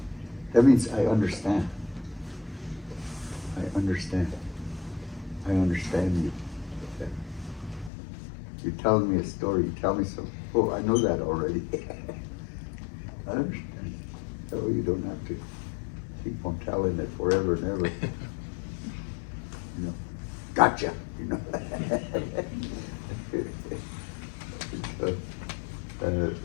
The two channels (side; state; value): right; drops out; at 7.9 s